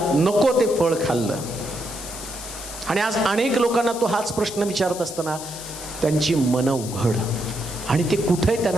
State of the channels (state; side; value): noise; left; hiss, 11 dB below the sound